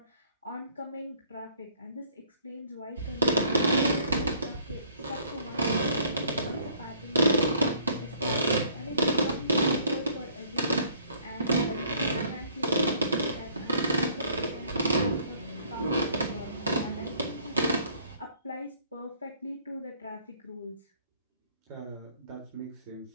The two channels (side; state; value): both; inverted; correlation -0.59